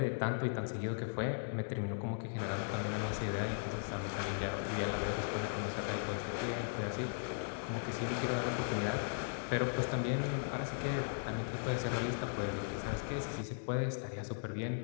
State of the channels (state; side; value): silent; right; digital silence